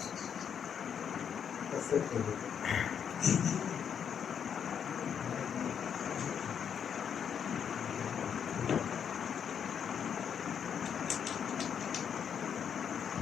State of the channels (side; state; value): right; quieter; 7.8 dB